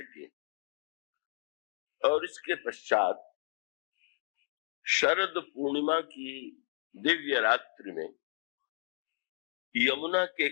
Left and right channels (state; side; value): silent; right; 55 dB below the other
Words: हैं, और इसके पश्चात शरद पूर्णिमा की दिव्य रात्रि में यमुना के